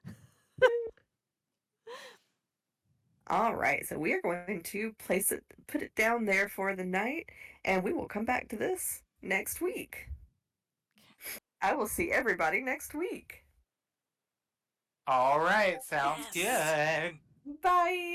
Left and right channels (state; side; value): identical; both; correlation 1.00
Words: All right, so we are going to put it down there for the night, and we will come back to this next week. I will see everybody next week. All right, sounds good.